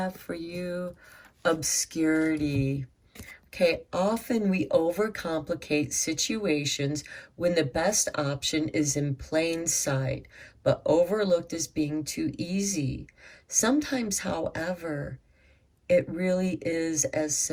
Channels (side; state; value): both; identical; correlation 1.00